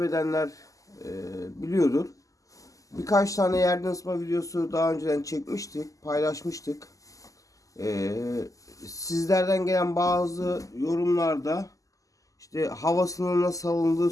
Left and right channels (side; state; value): right; late; 0.16 ms